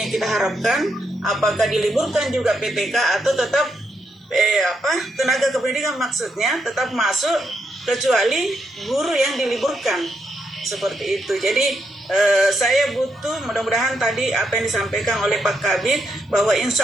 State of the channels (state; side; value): normal; both; correlation 0.80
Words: kita harapkan apakah diliburkan juga PTK atau tetap tenaga kependidikan maksudnya tetap masuk kecuali guru yang diliburkan. seperti itu. Jadi saya butuh, mudah-mudahan tadi apa yang disampaikan oleh Pak Kabid, bahwa